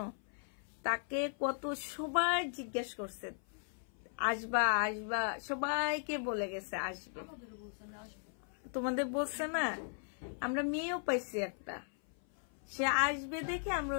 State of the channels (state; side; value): silent; right; 53 dB below the other